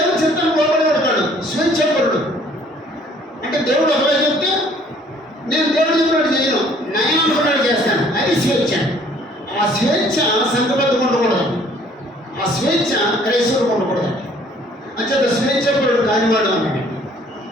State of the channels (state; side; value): normal; both; correlation 0.58